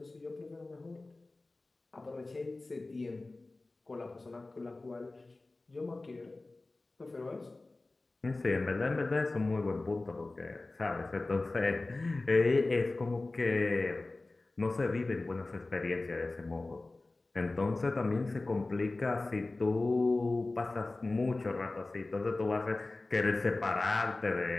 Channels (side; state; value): right; quieter; 3.2 dB